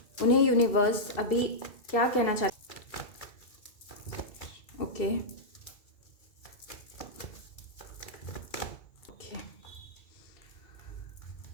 उन्हें यूनिवर्स अभी क्या कहना चाहता है। ओके ओके,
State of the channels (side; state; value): right; late; 2.2 ms